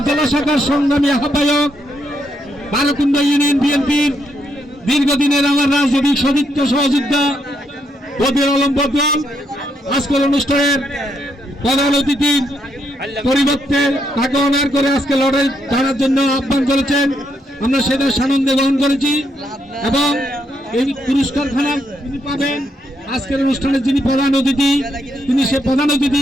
জেলা শাখার সংগ্রামী আহ্বায়ক বারকুণ্ড ইউনিয়ন বিএনপির দীর্ঘদিনের আমার রাজনৈতিক সতীর্থ সহযোদ্ধা বদির আলম বদল আজকের অনুষ্ঠানের প্রধান অতিথির পরিবর্তে তাকে অনার করে আজকে লড়াই ছাড়ার জন্য আহ্বান করেছেন। আমরা সেটা সানন্দে গ্রহণ করেছি এবং এই পুরস্কারখানা তিনি পাবেন। আজকের অনুষ্ঠানে যিনি প্রধান অতিথি তিনি সে প্রধান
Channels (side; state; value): both; normal; correlation 0.77